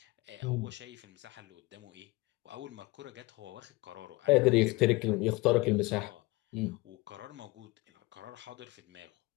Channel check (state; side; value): quieter; right; 22.2 dB